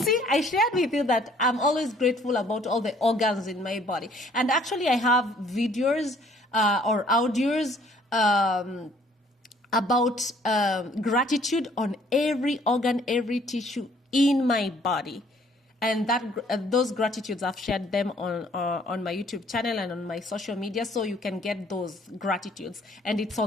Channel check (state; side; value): normal; both; correlation 0.60